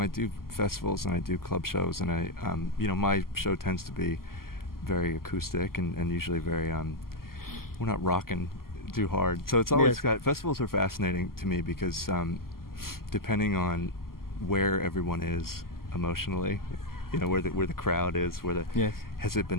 do festivals and I do club shows, and my show tends to be very acoustic and usually very we're not rocking too hard. So it's always festivals are fascinating to me because depending on where everyone is emotionally, where the crowd is, has it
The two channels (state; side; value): late; right; 0.92 ms